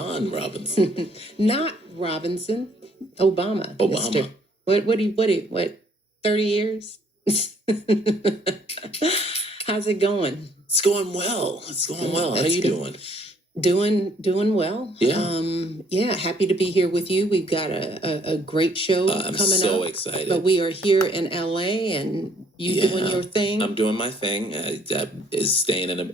Robinson. Not Robinson. Obama. Mister. What, 30 years? How's it going? It's going well. How you doing? Doing well. Yeah. Happy to be here with you. We've got a great show I'm coming so up. excited. But we are here in LA and you doing your thing. I'm doing my thing. I is staying in an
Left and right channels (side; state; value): both; normal; correlation 0.63